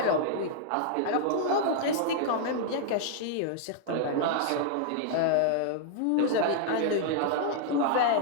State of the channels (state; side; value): different; both; correlation -0.01